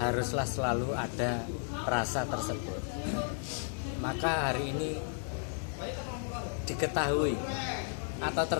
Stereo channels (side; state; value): right; silent; 55 dB below the other